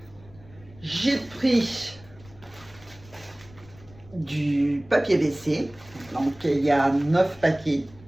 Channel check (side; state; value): left; noise; rumble, 23 dB below the sound